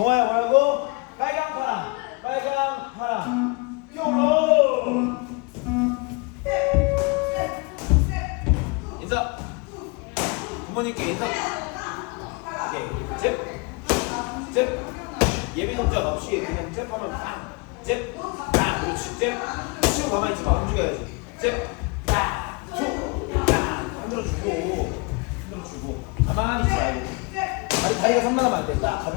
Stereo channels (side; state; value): right; quieter; 29.5 dB